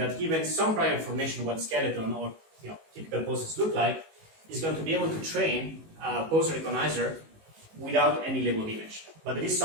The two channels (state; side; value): late; left; 19 ms